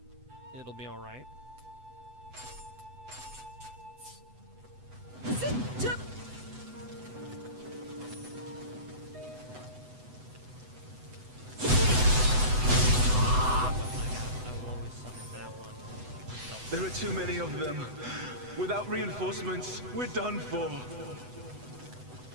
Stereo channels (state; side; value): late; left; 8.0 ms